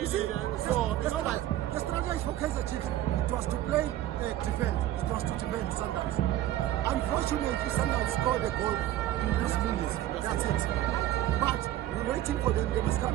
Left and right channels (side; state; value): left; quieter; 13.5 dB